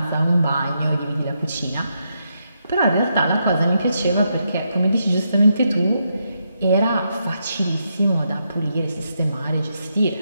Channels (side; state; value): both; inverted; correlation -0.81